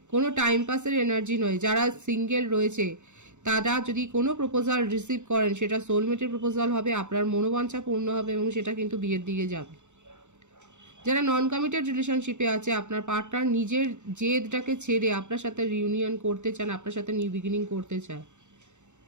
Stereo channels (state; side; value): late; left; 0.84 ms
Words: কোনো টাইম পাসের এনার্জি নয়। যারা সিঙ্গেল রয়েছে তারা যদি কোনো প্রপোজাল রিসিভ করেন সেটা সোলমেটের প্রপোজাল হবে, আপনার মনোবাঞ্ছা পূর্ণ হবে এবং সেটা কিন্তু বিয়ের দিকে যাবে। যারা নন কমিটেড রিলেশনশিপে আছে, আপনার পার্টনার নিজের জেদটাকে ছেড়ে আপনার সাথে রিউনিয়ন করতে চান, আপনার সাথে নিউ বিগিনিং করতে চায়।